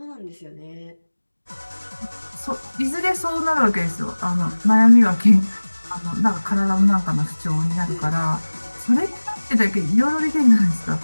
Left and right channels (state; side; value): inverted; both; correlation -1.00